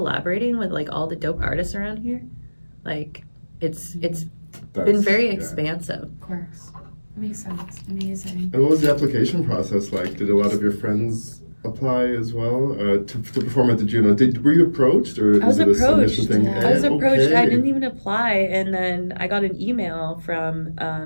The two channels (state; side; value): inverted; both; correlation -1.00